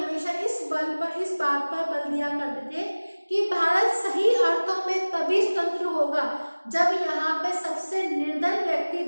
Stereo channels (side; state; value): both; inverted; correlation -1.00